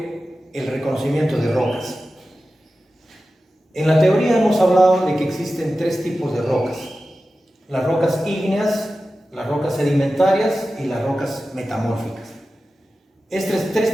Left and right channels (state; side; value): normal; both; correlation 0.94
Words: el reconocimiento de rocas. En la teoría hemos hablado de que existen tres tipos de rocas: las rocas ígneas, las rocas sedimentarias y las rocas metamórficas. Estos tres